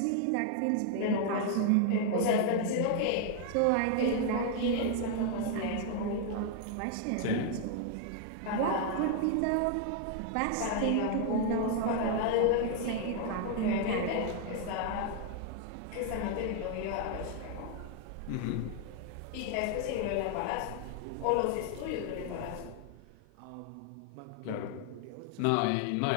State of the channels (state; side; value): different; both; correlation 0.00